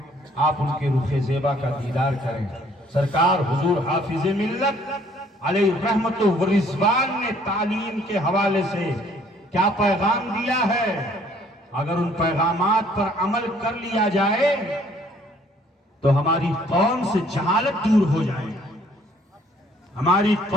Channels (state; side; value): normal; both; correlation 0.61